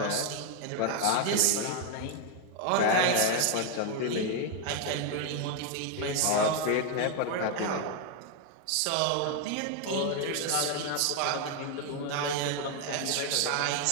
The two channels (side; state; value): both; different; correlation 0.01